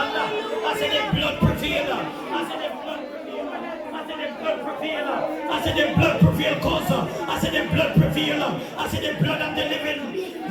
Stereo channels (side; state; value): both; identical; correlation 1.00